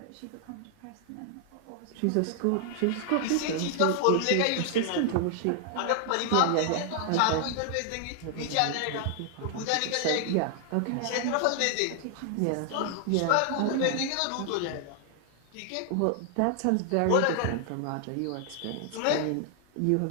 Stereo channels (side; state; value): both; different; correlation 0.00